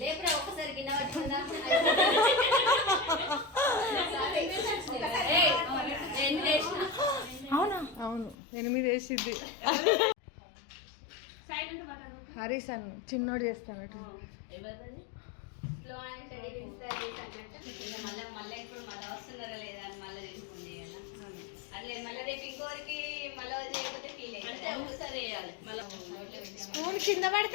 ఒక్కసారి గిన్నె పట్టుకుందా అవునా? అవును 8 వేసిద్ది. హరీష్ అన్న చిన్నోడు చేస్తానట్టు. మళ్ళీ ఇప్పుడు మళ్ళీ వస్తున్నారా లేదా అని మళ్ళీ తెలుసుకోండి కదా అట్లే మళ్ళీ రేపు ఇంకోరికి మళ్ళీ చేయకపోతే ఫీల్ అయితే ఒకసారి వేయాలి మళ్ళీ స్పూన్ కింద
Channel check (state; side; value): drops out; right; at 8.3 s